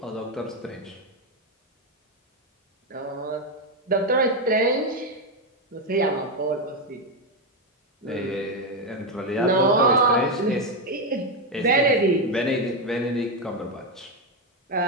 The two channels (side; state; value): both; normal; correlation 0.07